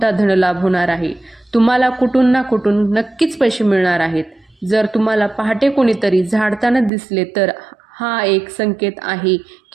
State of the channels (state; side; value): drops out; left; at 6.9 s